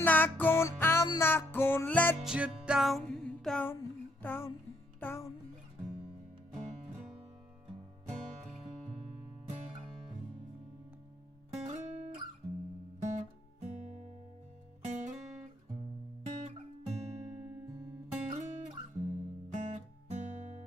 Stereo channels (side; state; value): both; normal; correlation 0.71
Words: not gonna let you down, down, down, down.